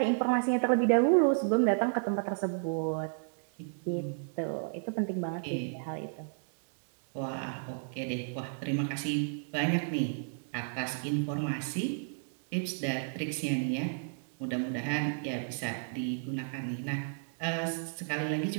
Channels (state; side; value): silent; left; digital silence